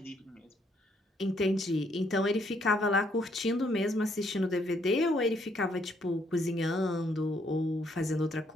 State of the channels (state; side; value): normal; both; correlation 0.70